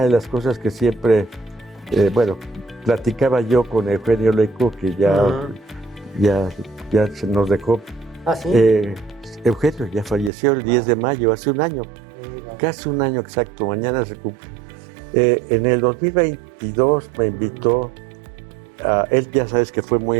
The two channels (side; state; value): left; drops out; at 10.3 s